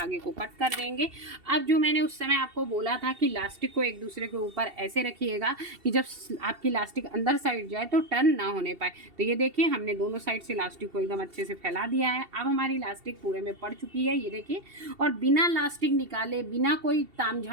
को कट कर देंगे। अब जो मैंने उस समय आपको बोला था कि इलास्टिक को एक दूसरे के ऊपर ऐसे रखिएगा कि जब आपकी इलास्टिक अंदर साइड जाए तो टर्न ना होने पाए। तो ये देखिए हमने दोनों साइड से इलास्टिक को एकदम अच्छे से फैला दिया है। अब हमारी इलास्टिक पूरे में पड़ चुकी है, ये देखिए। और बिना इलास्टिक निकाले, बिना कोई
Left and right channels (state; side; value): late; left; 2.7 ms